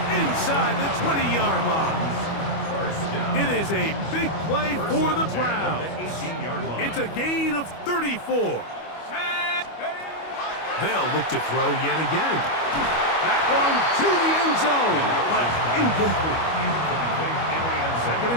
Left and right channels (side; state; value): right; late; 25 ms